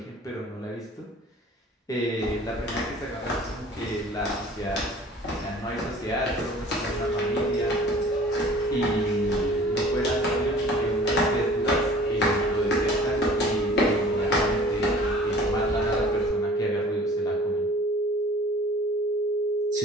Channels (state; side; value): normal; both; correlation 0.48